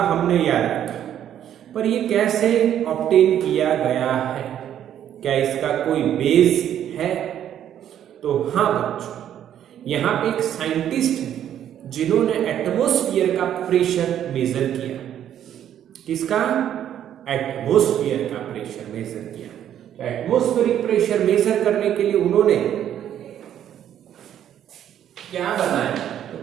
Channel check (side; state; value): left; quieter; 10.4 dB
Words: हमने याद रखा, पर ये कैसे ऑब्टेन किया गया है, क्या इसका कोई बेस है? तो हाँ बच्चों, यहाँ पे एक साइंटिस्ट है जिन्होंने एटमॉस्फेयर का प्रेशर मेजर किया। किसका? एटमॉस्फेयर का प्रेशर मेजर किया। तो एटमॉस्फेरिक प्रेशर मेजर करने के लिए उन्होंने क्या बनाया? तो